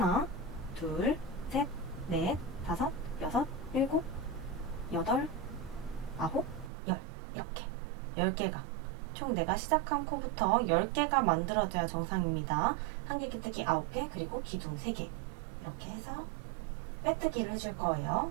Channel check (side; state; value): left; drops out; at 6.7 s